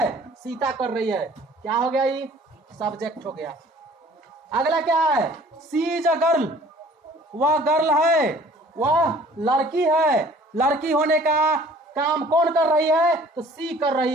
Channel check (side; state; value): both; normal; correlation 0.52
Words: सीता कर रही है। क्या हो गया, ये सब्जेक्ट हो गया। अगला क्या है, सी इज अ गर्ल, वह गर्ल है, वह लड़की है। लड़की होने का काम कौन कर रही है, तो सी कर